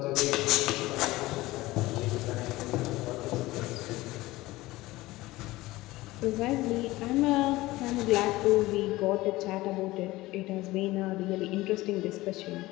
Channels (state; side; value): quieter; right; 18.7 dB